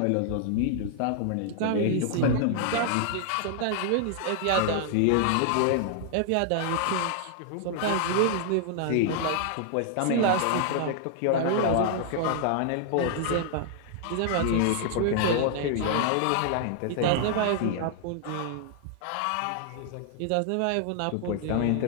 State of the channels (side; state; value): both; different; correlation 0.00